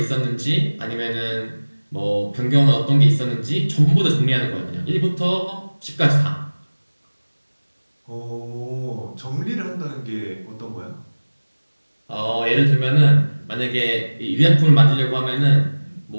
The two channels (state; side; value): inverted; both; correlation -1.00